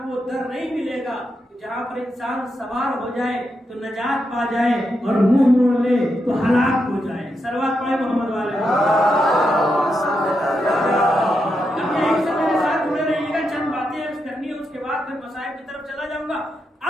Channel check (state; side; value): normal; both; correlation 0.84